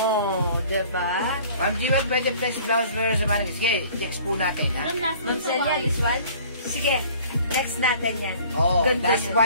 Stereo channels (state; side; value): inverted; both; correlation -0.51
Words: diba? Ma'am Jiwan, pwede flex blouse wear sa mannequin. Sige, text po natin ha. Ma'am Celia, this one? Sige, next natin yan. Oh, Ganda last niya.